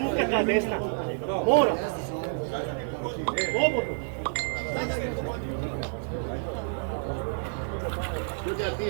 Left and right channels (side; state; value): left; silent; 59 dB below the other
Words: ta desna. Mora. Slobodno. Sudja, ti